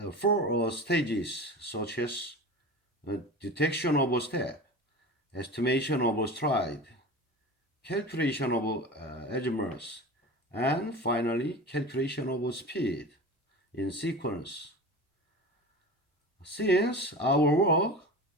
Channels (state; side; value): normal; both; correlation 0.32